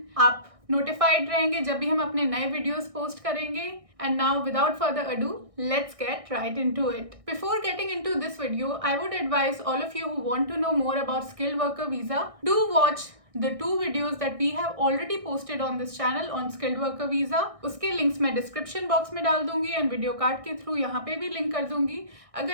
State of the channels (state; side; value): late; left; 1.6 ms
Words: आप नोटिफाइड रहेंगे जब भी हम अपने नए वीडियोस पोस्ट करेंगे। And now, without further ado, let's get right into it. Before getting into this video, I would advise all of you who want to know more about skilled worker visa, do watch the 2 videos that we have already posted on this channel on skilled worker visa. उसके लिंक्स मैं डिस्क्रिप्शन बॉक्स में डाल दूंगी एंड वीडियो कार्ड के थ्रू यहाँ पे भी लिंक कर दूंगी।